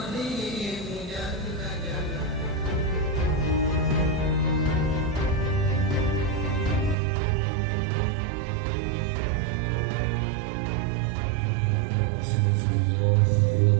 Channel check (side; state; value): left; drops out; at 7.0 s